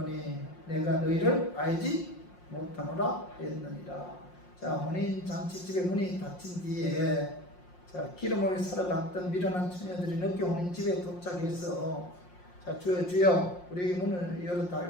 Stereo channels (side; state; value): right; late; 5.6 ms